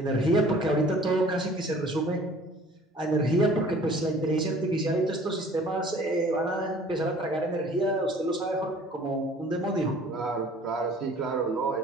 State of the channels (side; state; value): both; normal; correlation 0.51